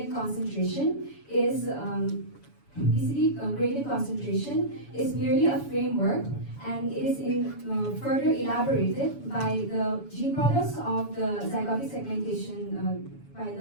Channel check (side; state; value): right; late; 7.1 ms